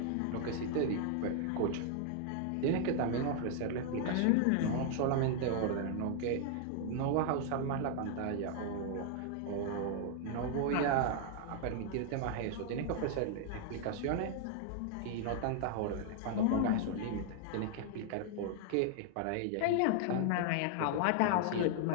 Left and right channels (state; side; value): different; both; correlation 0.00